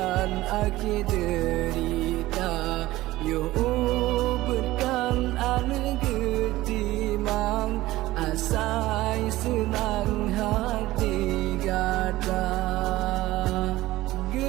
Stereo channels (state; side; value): quieter; left; 17.3 dB